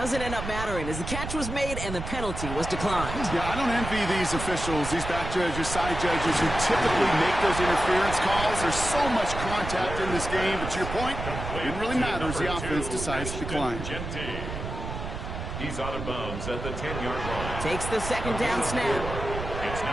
end up mattering as the catch was made and the penalty was declined. Yeah, I don't envy these officials, these back judges, side judges who typically make those interference calls. There's so much contact in this game, but to your point, it didn't really matter as the offense decides to decline. He's out of bounds at the 10-yard line. Takes the second down snap. It's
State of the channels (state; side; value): noise; right; rumble, 7 dB below the sound